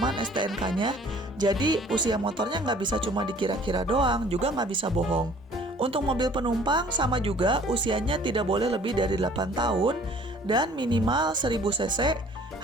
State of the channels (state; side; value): normal; both; correlation 0.53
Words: STNK-nya, jadi usia motornya nggak bisa cuma dikira-kira doang, juga nggak bisa bohong. Untuk mobil penumpang sama juga, usianya tidak boleh lebih dari 8 tahun dan minimal 1000 cc,